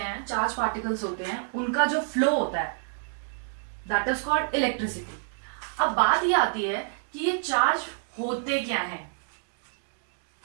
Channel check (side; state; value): left; silent; 59 dB below the other